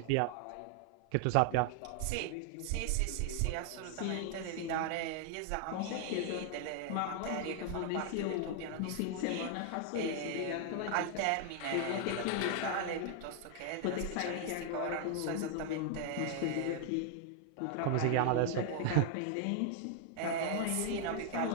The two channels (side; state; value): both; different; correlation 0.00